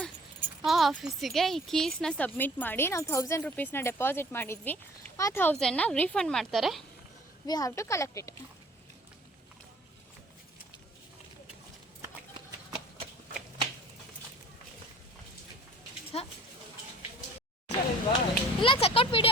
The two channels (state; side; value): normal; both; correlation 0.52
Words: ಆ ಆಫೀಸಿಗೆ ಈ ಕೀಸ್ನ ಸಬ್ಮಿಟ್ ಮಾಡಿ ನಾವು 1000 rupeesನ ಡೆಪಾಸಿಟ್ ಮಾಡಿದ್ವಿ. ಆ 1000ನ ರೀಫಂಡ್ ಮಾಡ್ತಾರೆ. We have to collect it. ಇಲ್ಲ, ಚೆಕ್ಔಟ್